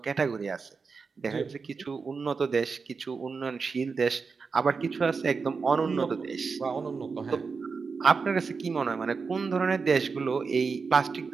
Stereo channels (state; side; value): quieter; left; 5.0 dB